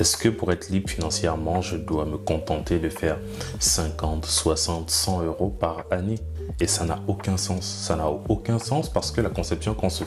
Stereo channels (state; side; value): identical; both; correlation 1.00